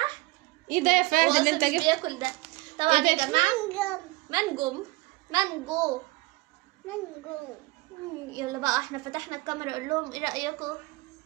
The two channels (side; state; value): left; quieter; 22.2 dB